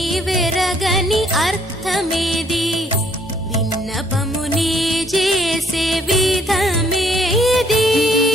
అర్థమేది విన్నపముని చేసే విధమేది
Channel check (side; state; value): both; normal; correlation 0.65